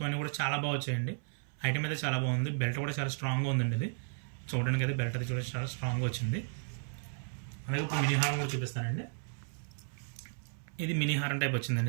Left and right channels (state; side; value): silent; left; 55 dB below the other